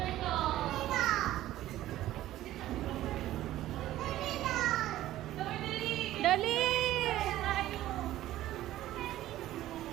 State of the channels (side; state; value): left; quieter; 14.4 dB